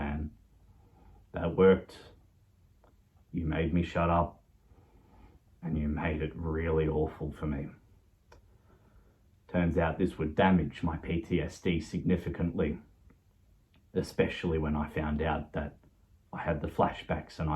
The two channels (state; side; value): identical; both; correlation 1.00